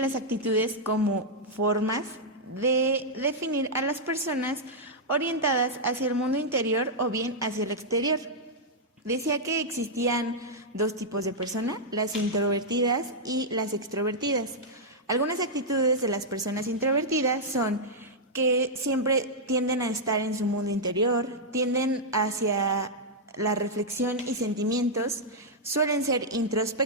actitudes como formas de definir a las personas orientadas hacia el mundo interior o bien hacia el exterior. Decía que existían dos tipos de personas, las introvertidas y las extrovertidas. Algunas actitudes de las personas introvertidas son que siempre tienden a estar en su mundo interior, tienden hacia la reflexión y sentimientos, suelen ser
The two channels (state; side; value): normal; both; correlation -0.06